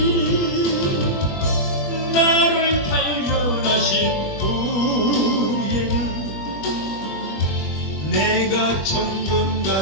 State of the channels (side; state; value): right; late; 21 ms